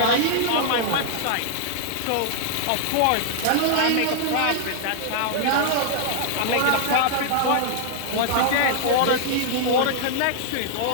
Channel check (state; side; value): different; both; correlation -0.01